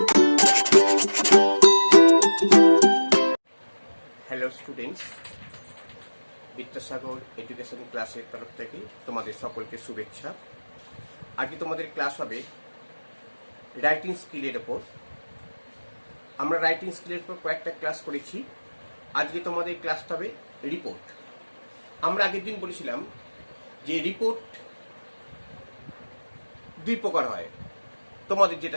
students, Vidyasagar education ক্লাসের তরফ থেকে তোমাদের সকলকে শুভেচ্ছা। আজকে তোমাদের ক্লাস হবে রাইটিং স্কিলের ওপর। আমরা রাইটিং স্কিলের উপর কয়েকটা ক্লাস করেছি। আজকে তোমাদের ক্লাসটা হবে রিপোর্ট। আমরা আগের দিন বলেছিলাম যে রিপোর্ট দুই প্রকার হয়। তোমাদের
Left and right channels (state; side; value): inverted; both; correlation -1.00